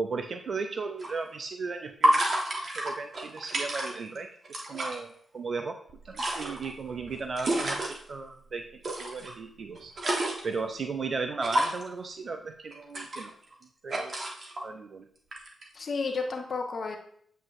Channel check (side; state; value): both; normal; correlation 0.87